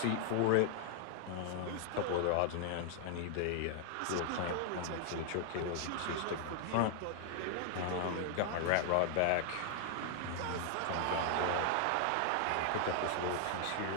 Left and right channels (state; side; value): different; both; correlation 0.00